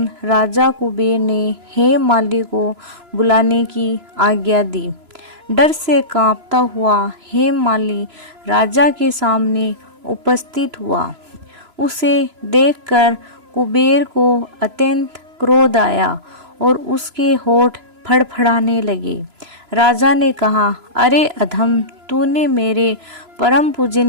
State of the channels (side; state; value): left; late; 3.0 ms